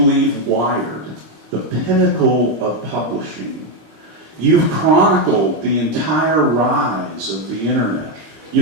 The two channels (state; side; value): late; left; 25 ms